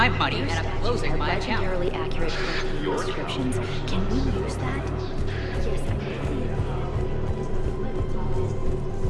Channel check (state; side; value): identical; both; correlation 1.00